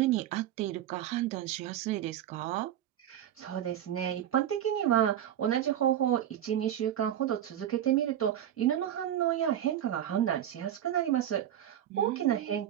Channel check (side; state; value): left; quieter; 11.0 dB